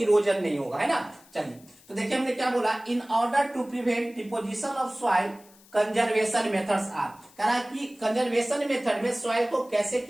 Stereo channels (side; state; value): left; noise; hiss, 26 dB below the sound